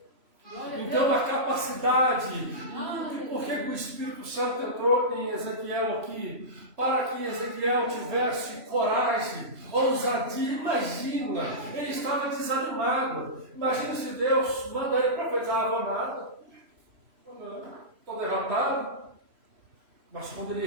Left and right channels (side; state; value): left; late; 3.0 ms